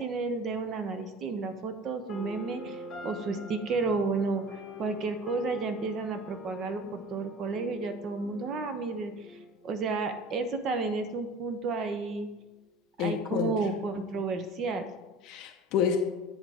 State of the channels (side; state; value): both; normal; correlation 0.40